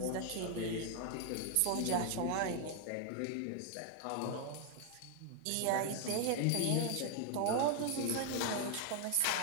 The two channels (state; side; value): different; both; correlation 0.00